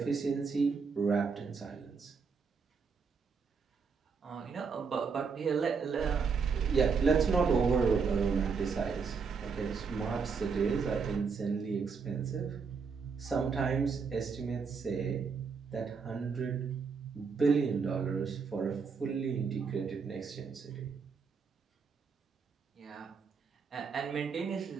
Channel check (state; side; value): quieter; left; 5.4 dB